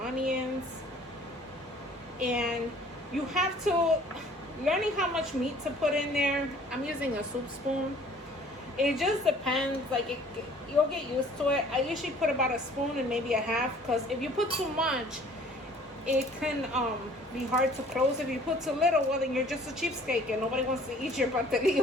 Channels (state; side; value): normal; both; correlation 0.54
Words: onions. And you have to, learning how much meat to put in there. I'm using a soup spoon. It just depends. Like you'll get used to it. I usually put about a spoon and maybe a half, because if you put too much, it can be hard to close. If you put too little, well, then you're just a cheapskate and nobody wants to eat your